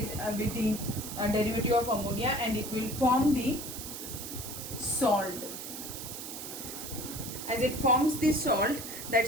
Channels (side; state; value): right; noise; hiss, 8 dB below the sound